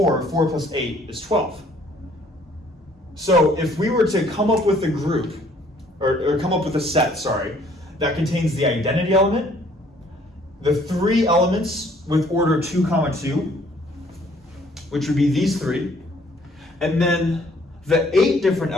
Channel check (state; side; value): normal; both; correlation 0.60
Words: 4 plus 8 is 12. So if we were to come up with a group, or come up with a set, that contains the identity element, the 3 elements with order 2, 2, which would be these 3, And then the 8 different